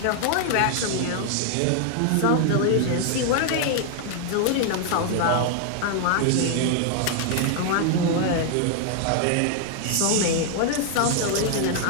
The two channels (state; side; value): different; both; correlation 0.00